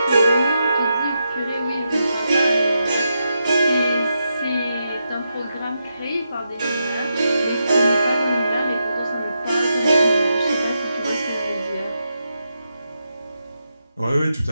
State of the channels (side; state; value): both; inverted; correlation -0.85